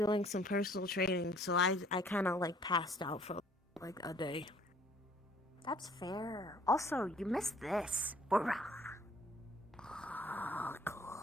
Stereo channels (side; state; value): both; normal; correlation 0.58